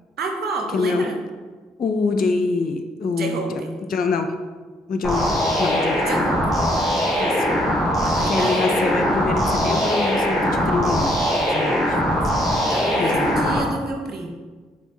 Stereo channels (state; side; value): normal; both; correlation 0.68